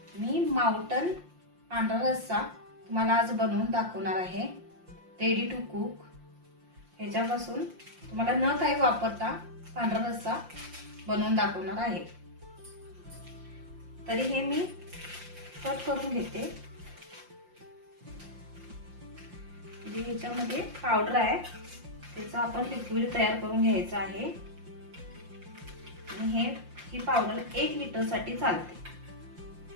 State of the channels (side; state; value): left; late; 5.7 ms